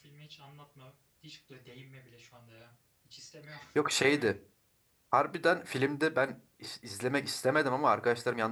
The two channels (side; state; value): both; identical; correlation 1.00